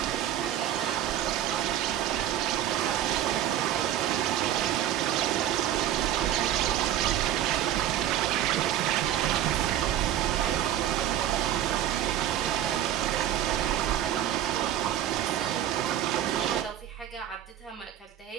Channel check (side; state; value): left; quieter; 11.5 dB